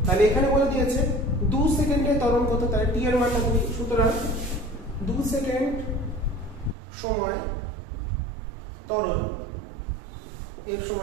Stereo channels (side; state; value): left; drops out; at 6.8 s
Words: তাহলে এখানে বলে দিয়েছে 2 সেকেন্ডে ত্বরণ কত, তাহলে t এর মানটা কত? সুতরাং 2 সেকেন্ড সময় ত্বরণ এর